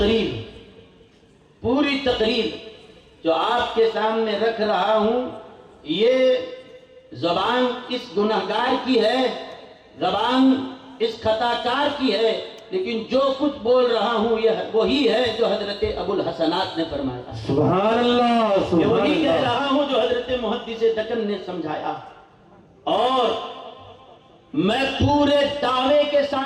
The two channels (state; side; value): identical; both; correlation 1.00